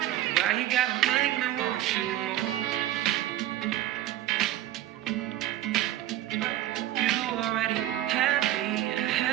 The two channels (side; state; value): left; quieter; 13.5 dB